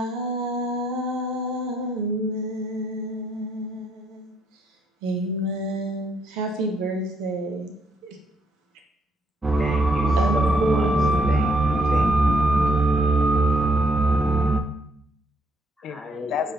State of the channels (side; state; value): both; normal; correlation 0.72